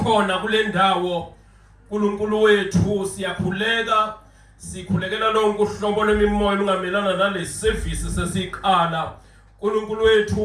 kule ndawo. uNkulunkulu wethu siyakhuleka, sikhulekela lonke uhlobo lwemimoya lungamelana nale service sesiqala. uNkulunkulu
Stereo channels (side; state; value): both; identical; correlation 1.00